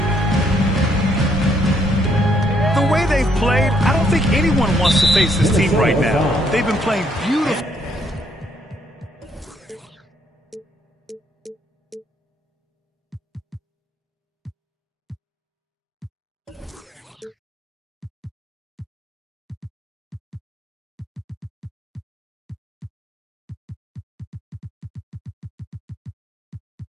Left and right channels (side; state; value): both; normal; correlation 0.70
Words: The way they've played, I don't think anyone wants to face this team right now. They've been playing beautiful.